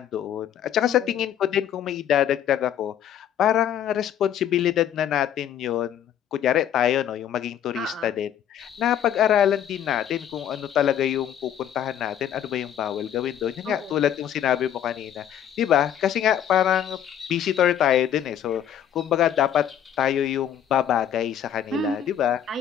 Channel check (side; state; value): right; quieter; 9.9 dB